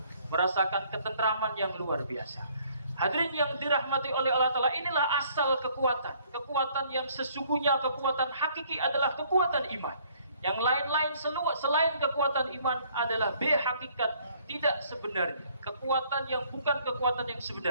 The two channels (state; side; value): inverted; both; correlation -0.62